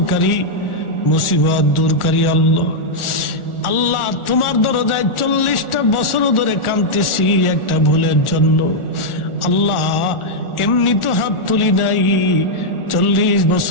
মুসিবত দূরকারী আল্লাহ। আল্লাহ, তোমার দরজায় 40টা বছর ধরে কাঁদতেছি একটা ভুলের জন্য। আল্লাহ, এমনি তো হাত তুলি নাই, 40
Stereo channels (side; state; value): right; late; 1.4 ms